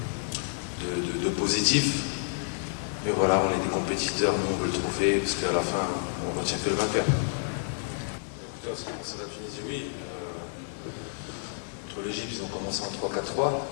de positif. Mais voilà, on est des compétiteurs, nous on veut le trophée, parce qu'à la fin, on retient que le vainqueur. En ce qui concerne la Tunisie, oui. Contre l'Égypte, ils ont commencé en 3-4-3.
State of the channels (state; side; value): silent; right; digital silence